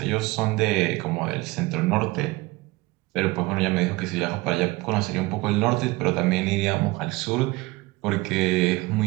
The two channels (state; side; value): quieter; left; 21.6 dB